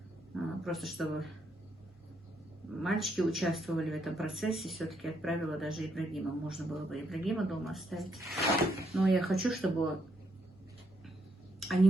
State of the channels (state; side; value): normal; both; correlation 0.75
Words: просто чтобы мальчики участвовали в этом процессе, все-таки отправила даже Ибрагима. Можно было бы Ибрагима дома оставить. Но я хочу, чтобы они